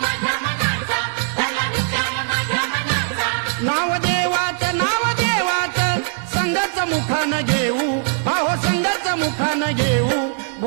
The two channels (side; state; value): left; silent; digital silence